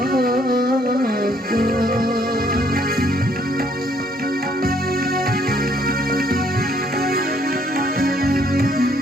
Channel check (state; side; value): normal; both; correlation 0.66